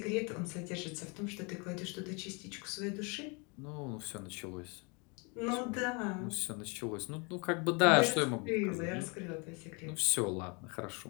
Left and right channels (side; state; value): right; quieter; 31.7 dB